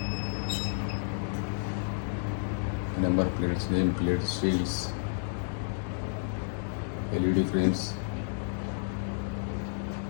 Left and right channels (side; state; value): right; silent; digital silence